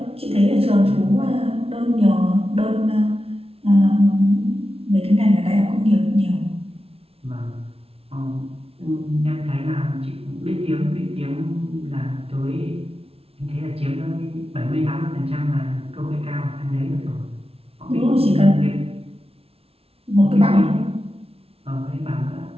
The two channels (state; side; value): late; left; 0.28 ms